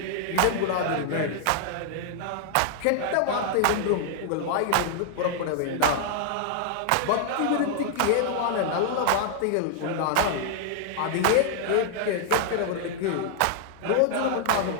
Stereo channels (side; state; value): both; different; correlation -0.01